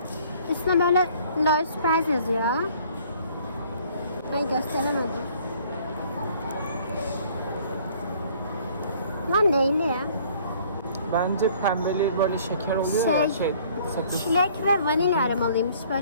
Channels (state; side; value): inverted; both; correlation -0.57